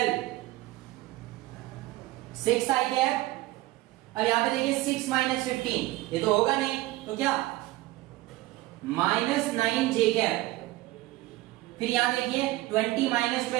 6 आई कैप। अब यहां पे देखिए 6 माइनस 15, ये तो होगा नहीं, तो क्या माइनस 9 जे कैप। फिर यहां देखिए 20 माइनस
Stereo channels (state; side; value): quieter; left; 18.1 dB